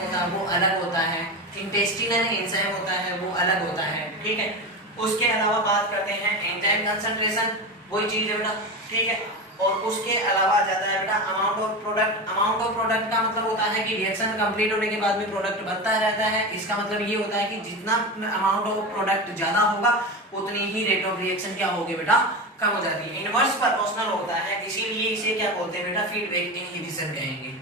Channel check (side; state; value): both; normal; correlation 0.22